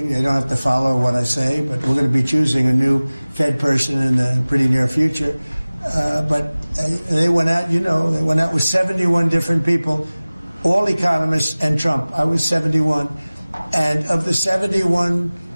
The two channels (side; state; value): both; inverted; correlation -0.99